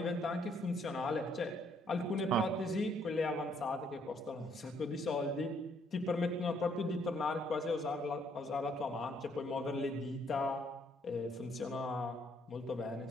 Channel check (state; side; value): normal; both; correlation 0.68